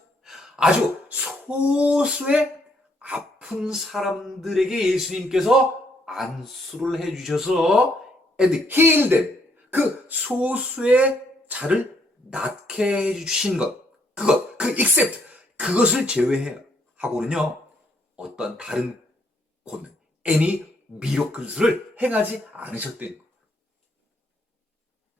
아주 소수의 아픈 사람들에게 예수님께서 안수를 해주셔서 and heal them. 그 소수의 자를 낫게 해주신 것. 그 except. 그것을 제외하고는요. 어떤 다른 권능, any miracles를 행하지 않으셨대요.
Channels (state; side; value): normal; both; correlation 0.71